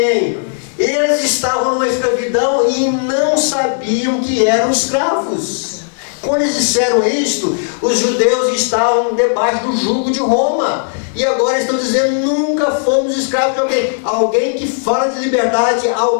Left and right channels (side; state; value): right; silent; digital silence